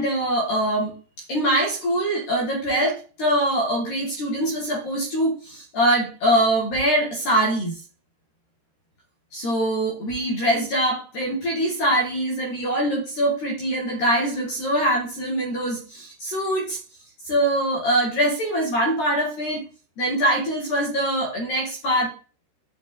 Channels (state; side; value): late; right; 13 ms